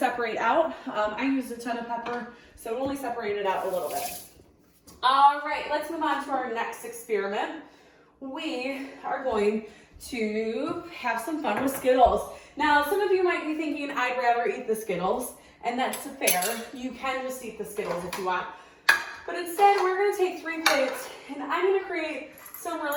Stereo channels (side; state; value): both; identical; correlation 1.00